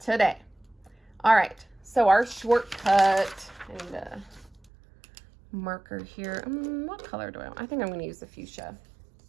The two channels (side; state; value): left; drops out; at 4.7 s